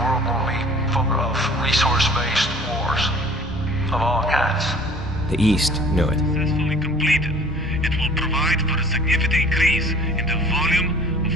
won't be full of resource-based wars of all kinds. The East knew it. Successfully completed, it will provide for a significant increase in the volume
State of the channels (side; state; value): both; normal; correlation 0.50